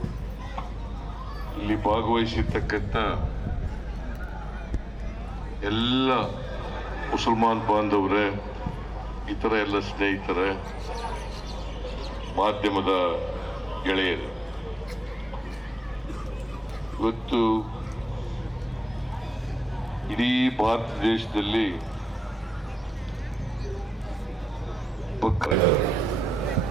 ಇಲ್ಲಿ ಭಾಗವಹಿಸಿರ್ತಕ್ಕಂಥ ಎಲ್ಲ ಮುಸಲ್ಮಾನ್ ಬಾಂಧವರೇ, ಇತರ ಎಲ್ಲ ಸ್ನೇಹಿತರೇ, ಮಾಧ್ಯಮದ ಗೆಳೆಯರು, ಇವತ್ತು ಇಡೀ ಭಾರತ ದೇಶದಲ್ಲಿ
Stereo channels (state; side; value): normal; both; correlation 0.92